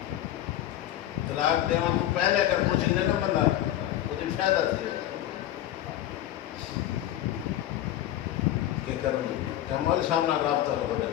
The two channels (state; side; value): quieter; right; 12.9 dB